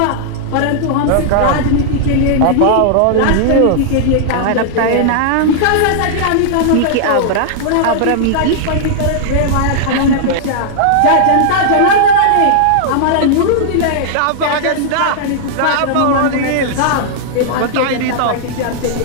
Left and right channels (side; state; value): both; different; correlation -0.01